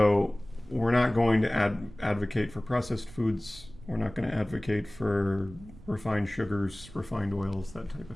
we're not going to advocate for processed foods. We're not going to advocate for refined sugars, refined oils, that type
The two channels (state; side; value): noise; right; rumble, 19 dB below the sound